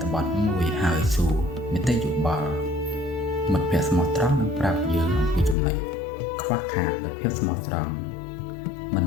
ថបទមួយហើយសួរនីតិយោបល់មិត្តភក្តិស្មោះត្រង់នឹងប្រាប់យើងអំពីចំណុចខ្វះខាតនៃភាពស្មោះត្រង់មិន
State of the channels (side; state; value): right; drops out; at 5.6 s